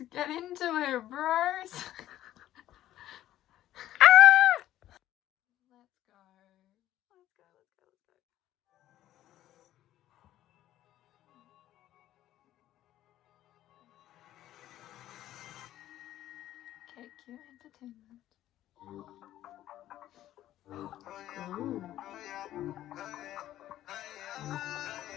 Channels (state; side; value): quieter; right; 13.3 dB